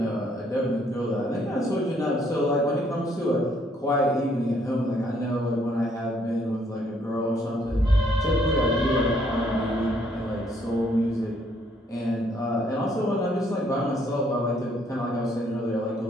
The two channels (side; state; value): both; normal; correlation 0.68